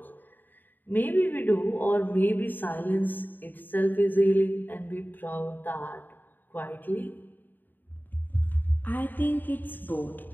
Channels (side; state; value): right; late; 0.090 ms